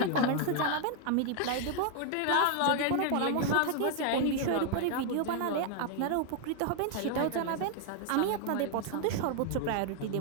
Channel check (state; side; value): different; both; correlation 0.00